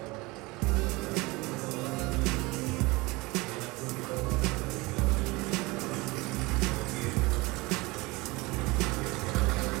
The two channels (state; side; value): quieter; left; 23.3 dB